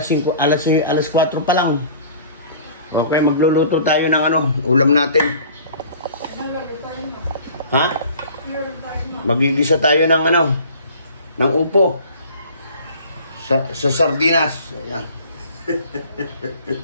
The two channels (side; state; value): both; inverted; correlation -0.47